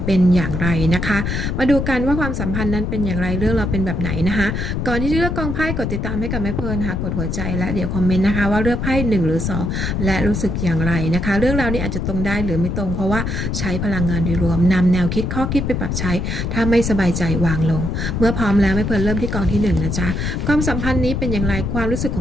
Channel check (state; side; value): noise; left; rumble, 2 dB below the sound